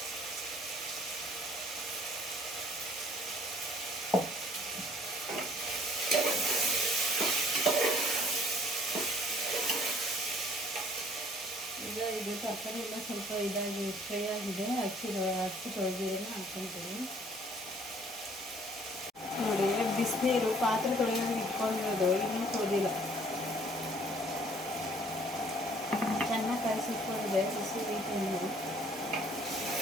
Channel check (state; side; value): normal; both; correlation 0.58